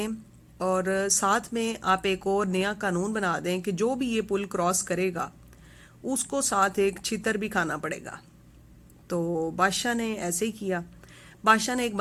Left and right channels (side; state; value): both; identical; correlation 1.00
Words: और साथ में आप एक और नया कानून बना दें कि जो भी ये पुल क्रॉस करेगा उसको साथ एक छितर भी खाना पड़ेगा। तो बादशाह ने ऐसे ही किया। बादशाह ने एक